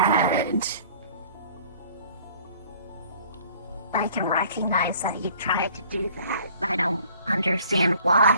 I can recognize that you tried to do that. I don't understand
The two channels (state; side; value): inverted; both; correlation -0.53